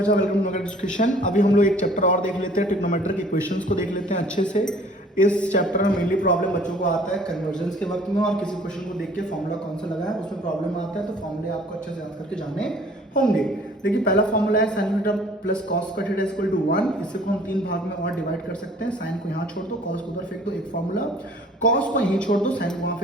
वेलकम टू एजुकेशन। अभी हम लोग एक चैप्टर और देख लेते हैं, ट्रिग्नोमेट्रिक इक्वेशंस को देख लेते हैं अच्छे से। इस चैप्टर में मेनली प्रॉब्लम बच्चों को आता है कन्वर्जेंस के वक्त में, और किसी क्वेश्चन को देख के फॉर्मूला कौन सा लगा है उसमें प्रॉब्लम आता है, तो फॉर्मूले आपको अच्छे से याद करके जाने होंगे। देखिए पहला फॉर्मूला है साइन थीटा प्लस कॉस का थीटा इक्वल टू 1। इसे को हम तीन भाग में और डिवाइड कर सकते हैं। साइन को यहाँ छोड़ दो, कॉस को उधर फेंक दो, एक फॉर्मूला। कॉस को यहीं छोड़ दो, साइन को वहाँ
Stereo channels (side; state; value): both; normal; correlation 0.53